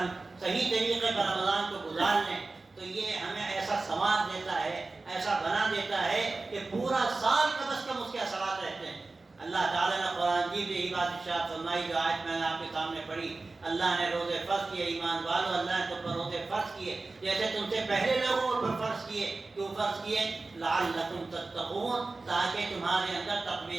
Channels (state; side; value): quieter; left; 3.5 dB